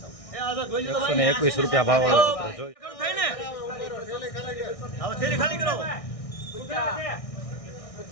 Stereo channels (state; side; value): late; right; 1.6 ms